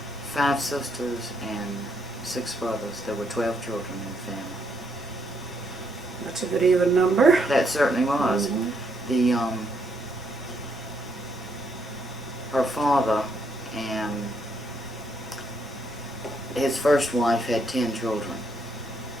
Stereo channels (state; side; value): normal; both; correlation 0.74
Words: 5 sisters and 6 brothers. There were 12 children in the family. That's a good even number. That certainly was. The her father and his first wife had 10 children,